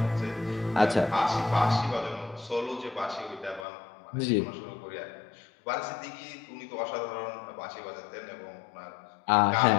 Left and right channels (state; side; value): drops out; right; at 3.7 s